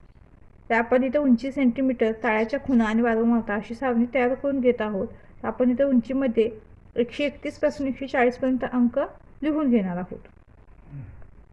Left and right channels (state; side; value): identical; both; correlation 1.00